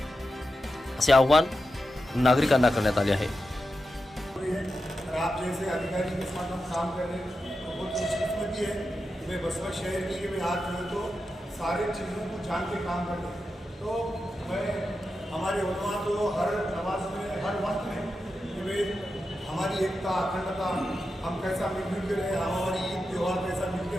असे आवाहन नागरिकांना करण्यात आले आहे। आप जैसे अधिकारी के साथ हम काम कर रहे हैं तो बहुत खुशकिस्मती है। मैं वसमत शहर की मैं आज जो तो सारे चीज़ों को जान के काम कर रहे हैं। तो मैं हमारे उलमा तो हर नमाज में हर वक्त में कि भाई हमारी एकता अखंडता हम कैसा मिलजुल के रहे, हम हमारी ईद त्यौहार कैसा मिल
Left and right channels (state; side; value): normal; both; correlation 0.89